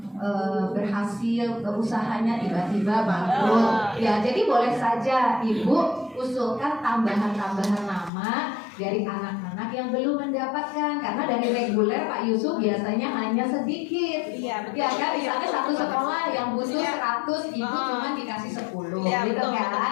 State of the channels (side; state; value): right; drops out; at 8.1 s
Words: berhasil usahanya tiba-tiba bangkrut. Ya, jadi boleh saja Ibu usulkan tambahan-tambahan nama dari anak-anak yang belum mendapatkan, karena dari reguler Pak Yusuf biasanya hanya sedikit. Iya, betul. Ya kan, misalnya satu sekolah yang butuh 100, Ibu cuma dikasih 10 Iya, gitu betul, kan. betul,